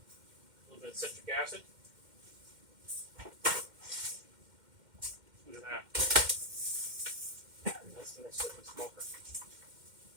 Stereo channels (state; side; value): late; left; 2.1 ms